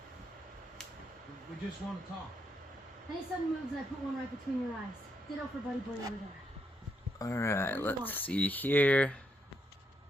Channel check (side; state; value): both; normal; correlation 0.78